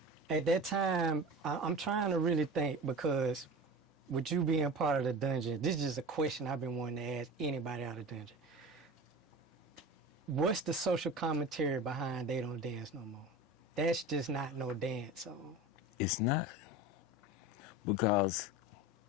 at that time, I'm trying to really think, because with you being part of the dungeon, this is just a question I've been wanting to ask anybody out of the dungeon. What's the social commentary behind They Don't Dance No More? That's just not no dance song. It's not. Because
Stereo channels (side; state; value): both; normal; correlation 0.32